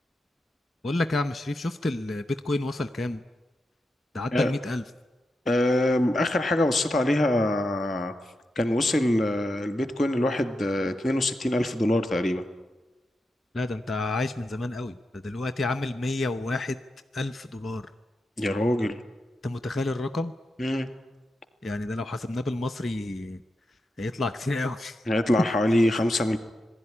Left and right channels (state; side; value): normal; both; correlation 0.87